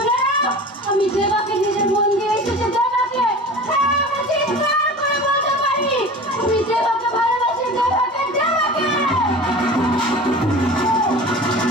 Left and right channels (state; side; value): normal; both; correlation 0.37